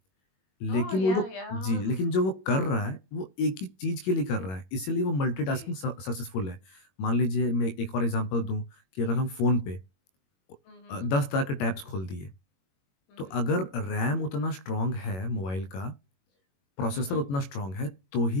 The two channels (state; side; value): late; right; 21 ms